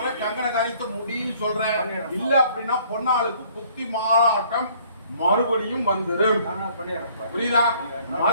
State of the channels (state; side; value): inverted; both; correlation -0.59